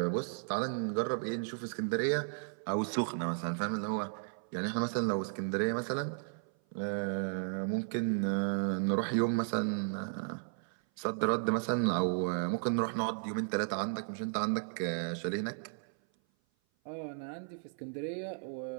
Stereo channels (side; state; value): left; silent; 55 dB below the other